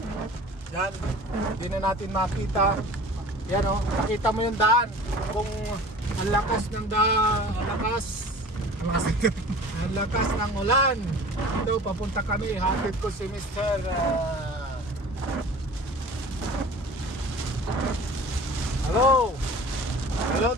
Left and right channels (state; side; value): normal; both; correlation 0.42